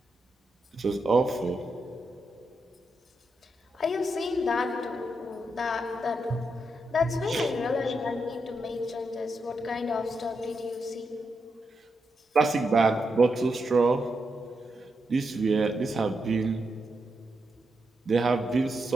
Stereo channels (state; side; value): normal; both; correlation 0.84